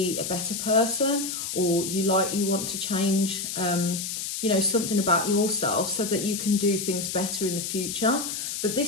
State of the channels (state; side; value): noise; left; hiss, 4 dB below the sound